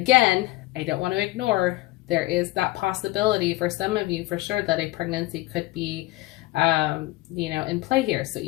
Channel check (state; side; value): quieter; right; 18.7 dB